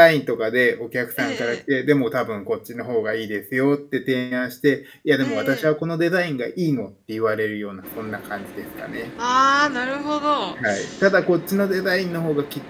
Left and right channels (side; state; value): both; identical; correlation 1.00